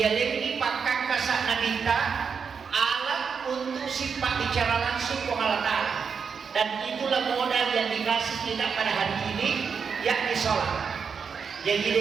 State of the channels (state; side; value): quieter; left; 6.1 dB